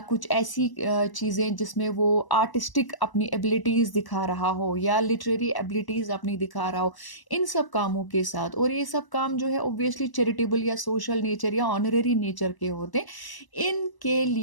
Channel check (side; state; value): right; late; 1.0 ms